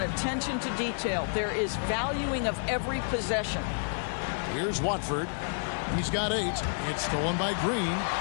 attention to detail. There is valuing of every possession. Here's Watford. He's got 8. It's stolen by Green.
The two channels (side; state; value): right; silent; digital silence